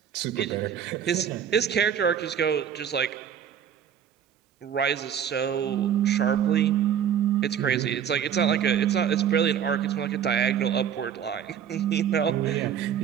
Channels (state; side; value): quieter; left; 8.8 dB